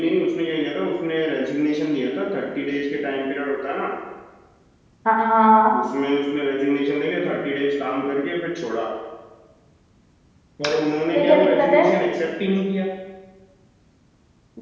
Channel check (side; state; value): both; identical; correlation 1.00